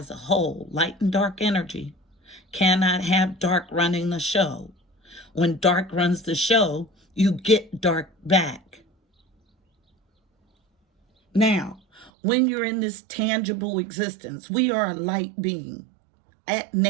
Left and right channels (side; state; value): left; drops out; at 12.1 s